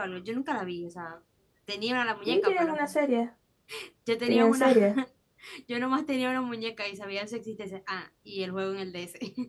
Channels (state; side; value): identical; both; correlation 1.00